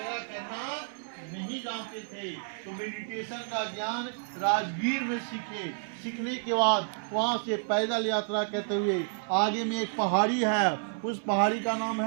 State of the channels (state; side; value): silent; left; 58 dB below the other